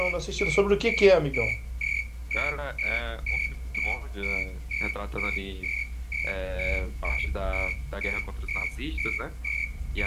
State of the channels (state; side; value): identical; both; correlation 1.00